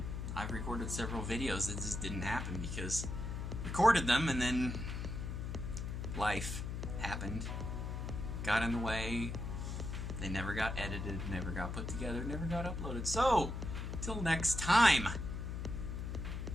I've recorded several videos that just didn't happen because I recorded them and then life happened, got in the way, they never got edited, never got put together, never got uploaded. So, till next time,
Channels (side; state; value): left; noise; hum, 4 dB below the sound